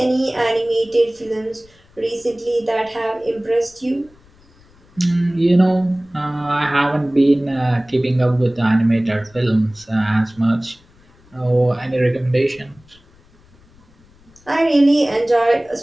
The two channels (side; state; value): left; noise; rumble, 29 dB below the sound